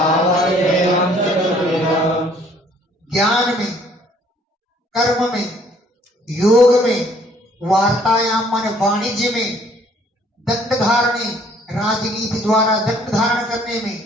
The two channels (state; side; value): normal; both; correlation 0.60